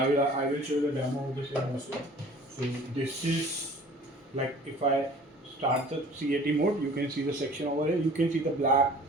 I will show the demo of the same also. So this is like if I start the CAT mode, you can see the section over here. You can see the black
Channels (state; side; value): normal; both; correlation 0.48